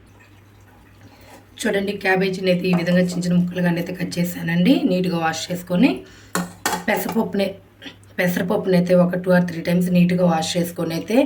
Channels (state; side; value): identical; both; correlation 1.00